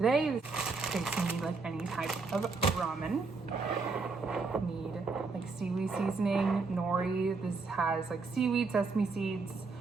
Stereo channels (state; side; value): quieter; left; 4.1 dB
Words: Okay, so you need like any type of ramen. You need like seaweed seasoning, nori. This has like seaweed, sesame seeds,